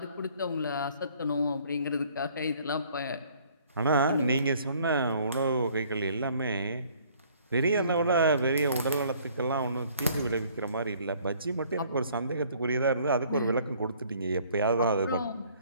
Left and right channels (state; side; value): inverted; both; correlation -0.58